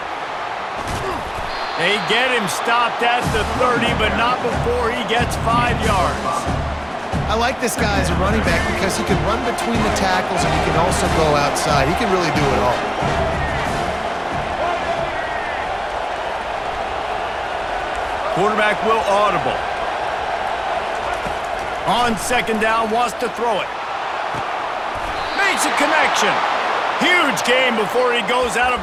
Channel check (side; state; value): both; identical; correlation 1.00